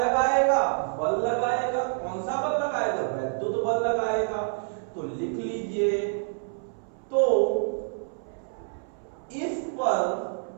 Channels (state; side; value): silent; left; 60 dB below the other